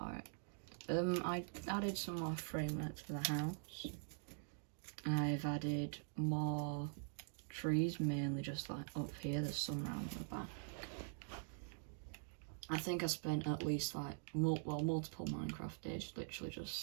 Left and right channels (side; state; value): left; silent; digital silence